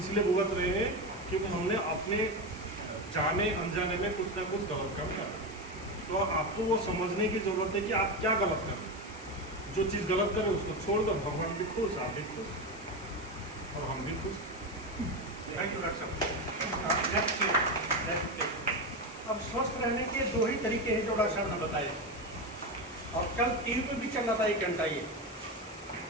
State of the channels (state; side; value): noise; left; hiss, 18 dB below the sound